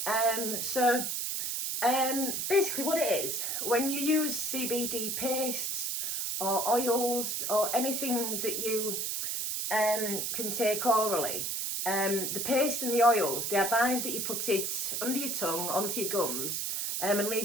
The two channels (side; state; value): right; noise; hiss, 1 dB below the sound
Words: Basically what it is, when you use CBD pastes or oils or anything that you can take orally, the paste and the oils, they advise that you put it under your tongue, onto your gums, and